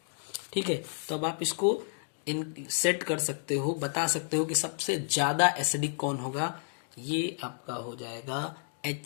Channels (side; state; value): right; silent; 56 dB below the other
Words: ठीक है, तो अब आप इसको इन सेट कर सकते हो, बता सकते हो कि सबसे ज्यादा एसिडिक कौन होगा। ये आपका हो जाएगा